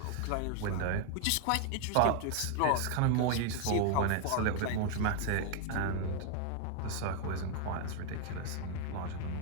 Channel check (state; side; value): different; both; correlation 0.00